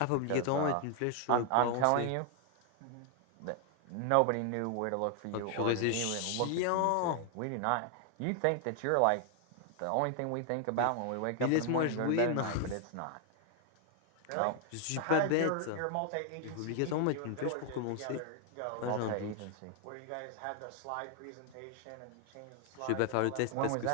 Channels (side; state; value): both; different; correlation 0.00